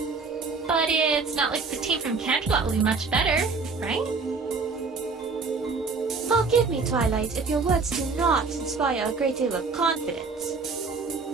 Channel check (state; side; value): quieter; left; 4.5 dB